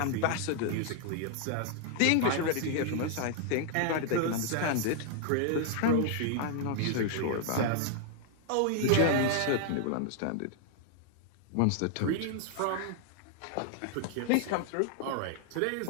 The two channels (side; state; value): both; different; correlation 0.00